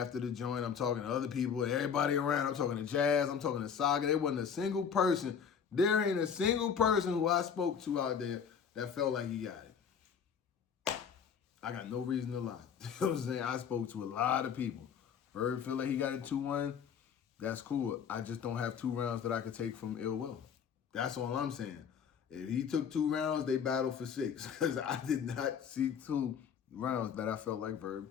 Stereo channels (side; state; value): right; quieter; 7.2 dB